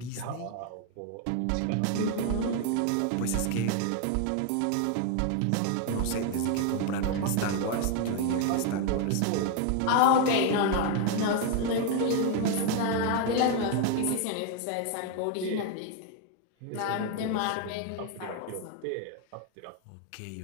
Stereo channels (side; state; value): both; different; correlation 0.01